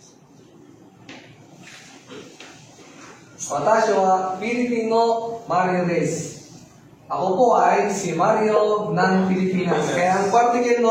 Watashi wa Filipino Mario des. Ako po ay si Mario ng Pilipinas. Kaya ang particle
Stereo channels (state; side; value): identical; both; correlation 1.00